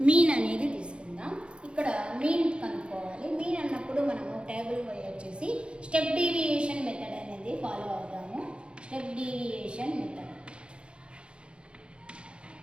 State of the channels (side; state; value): left; late; 0.056 ms